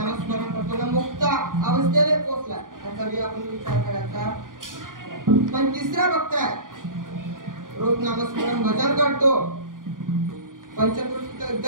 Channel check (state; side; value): late; left; 0.89 ms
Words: करतो ना मुक्त अवस्थेला पोहोचला त्याचा बी आपण विचार करायचा. पण तिसरा बघताय रोज नामस्मरण भजन करतो पंचकृषी